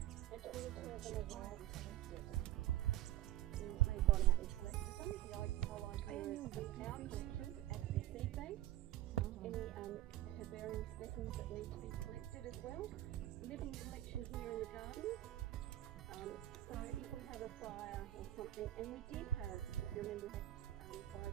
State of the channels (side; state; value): left; quieter; 14.2 dB